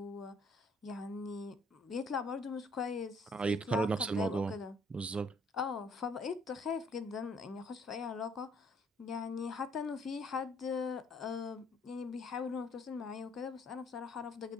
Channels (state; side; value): normal; both; correlation 0.63